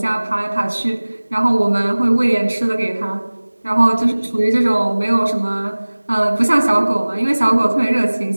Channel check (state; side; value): inverted; both; correlation -1.00